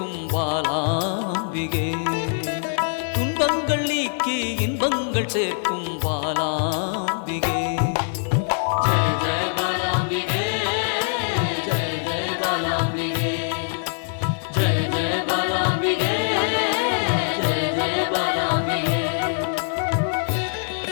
பாலாம்பிகே, துன்பங்கள் நீக்கி இன்பங்கள் சேர்க்கும் பாலாம்பிகே.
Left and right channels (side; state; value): right; silent; 57 dB below the other